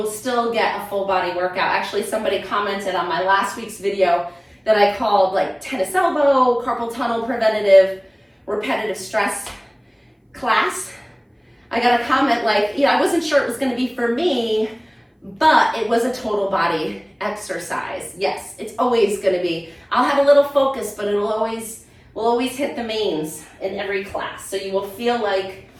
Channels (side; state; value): both; identical; correlation 1.00